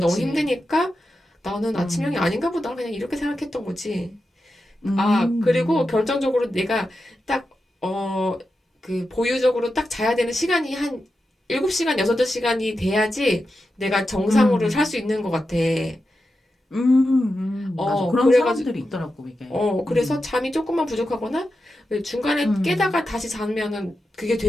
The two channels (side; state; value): both; normal; correlation 0.90